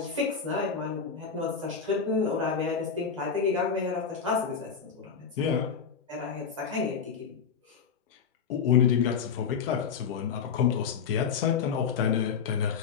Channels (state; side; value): quieter; right; 6.4 dB